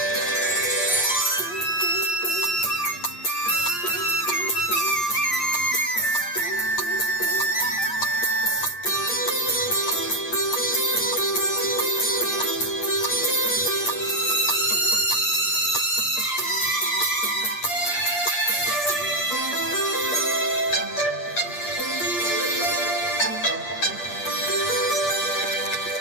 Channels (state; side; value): late; right; 8.5 ms